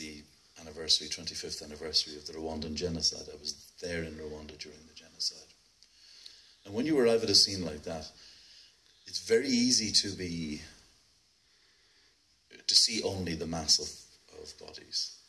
25th anniversary of the Rwandan genocide. I was there in Rwanda during the genocide. And when you arrive at a scene like that, it's very easy to see only the mass of bodies.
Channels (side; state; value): both; identical; correlation 1.00